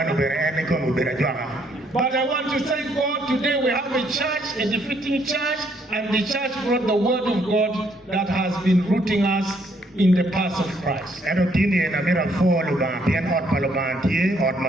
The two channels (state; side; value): normal; both; correlation 0.69